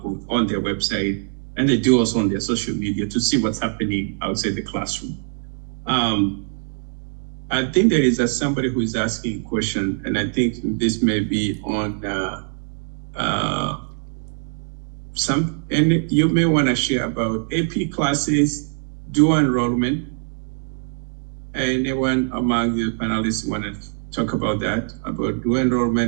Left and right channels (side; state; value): left; silent; digital silence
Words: on their website, and they do also on their social media to see what's happening outside the classroom. I think there is somebody who is asking a question, and I think this may be on and you may want to share about AP classes, dual enrollment. Anyone among the panelists want to talk about that, about dual